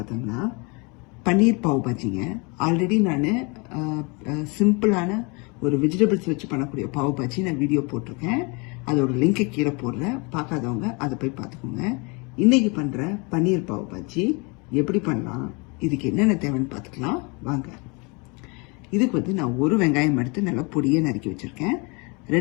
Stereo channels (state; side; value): quieter; right; 30.1 dB